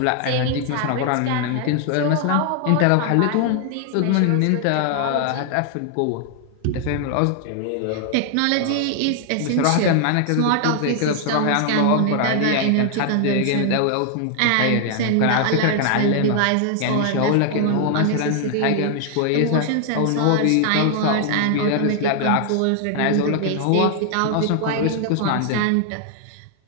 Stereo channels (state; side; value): different; both; correlation 0.00